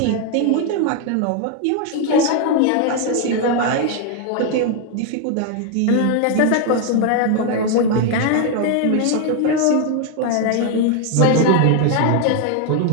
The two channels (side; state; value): both; different; correlation 0.01